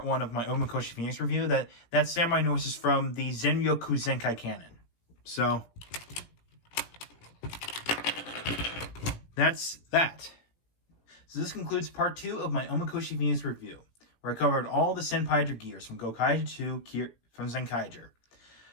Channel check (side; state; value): right; late; 18 ms